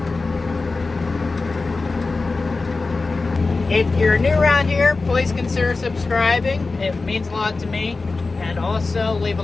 If you're new around here, please consider subscribing. It means a lot to me. And also leave a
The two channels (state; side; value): quieter; right; 3.7 dB